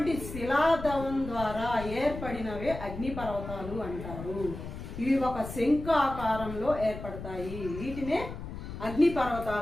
శిలాద్రవం ద్వారా ఏర్పడినవే అగ్నిపర్వతాలు అంటారు. ఇవి ఒక శంఖ ఆకారంలో ఏర్పడతాయి, వీటినే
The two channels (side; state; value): left; noise; rumble, 9 dB below the sound